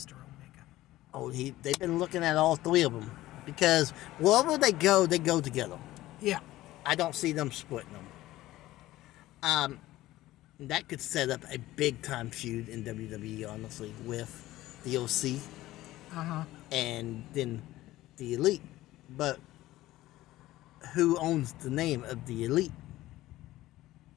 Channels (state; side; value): quieter; right; 16.2 dB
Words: Omega. Oh, they've been looking at all three of them. Because wherever they go together. Yeah. I don't see them splitting them. That could set up a big-time feud in WWE, honestly, with the OC. And then the Elite. But who owns the name of the Elite?